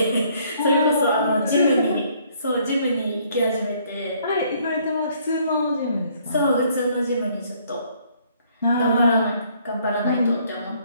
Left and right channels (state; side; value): inverted; both; correlation -0.64